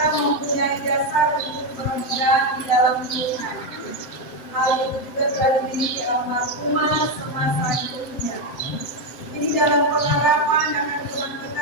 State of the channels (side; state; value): right; late; 7.9 ms